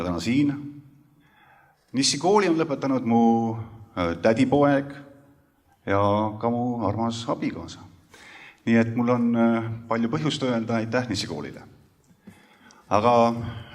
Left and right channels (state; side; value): identical; both; correlation 1.00